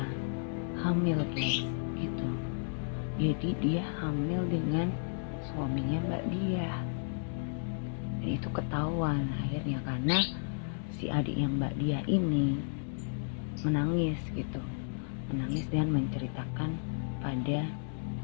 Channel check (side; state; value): right; silent; digital silence